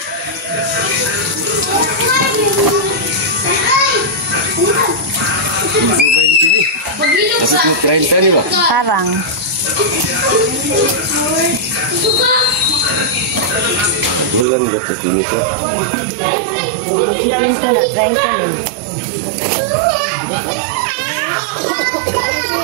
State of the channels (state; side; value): drops out; left; at 14.5 s